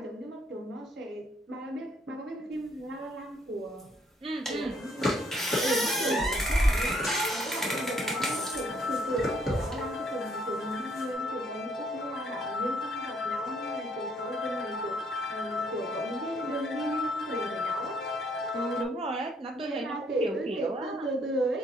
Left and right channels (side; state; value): both; normal; correlation 0.67